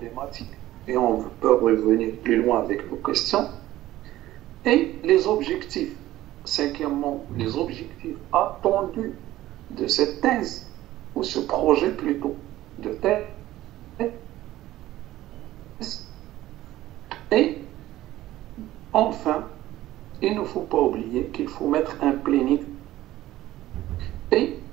et on peut revenir plus loin avec nos questions, et les objectifs. Cinquièmement, les objectifs attendus de cette thèse, ou ce projet plutôt, de thèse. Et enfin, il ne faut pas oublier qu'il faut mettre un planning et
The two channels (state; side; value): quieter; left; 15.2 dB